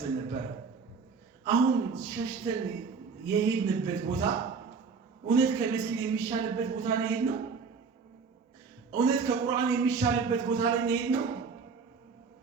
ነበር። አሁን ሸሽተን የሄድንበት ቦታ እውነት ከመስጊድ የሚሻልበት ቦታ ላይ ሄድ ነው? እውነት ከቁርአን የሚሻልበት ቦታ ላይ ሄድ ነው?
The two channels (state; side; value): quieter; left; 5.2 dB